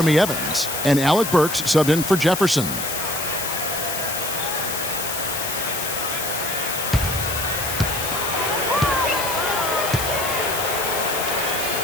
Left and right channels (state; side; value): noise; left; hiss, 4 dB below the sound